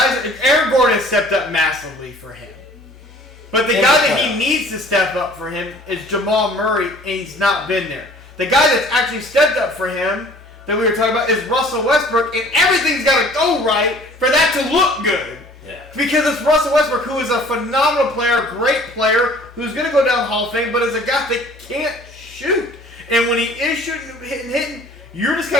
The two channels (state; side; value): normal; both; correlation 0.51